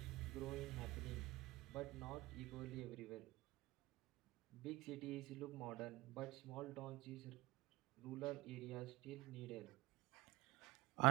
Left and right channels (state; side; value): quieter; left; 19.8 dB